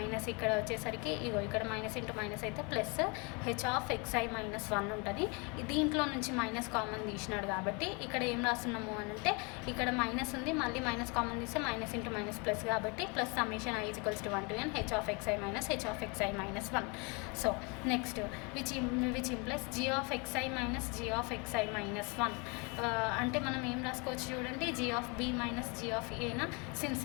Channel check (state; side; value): quieter; right; 31.1 dB